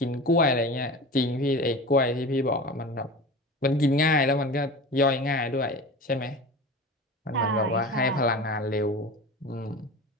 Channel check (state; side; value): normal; both; correlation 0.33